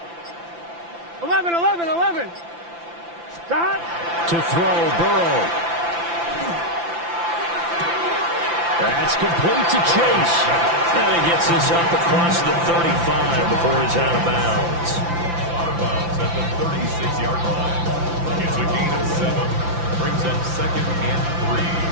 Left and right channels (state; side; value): late; left; 5.9 ms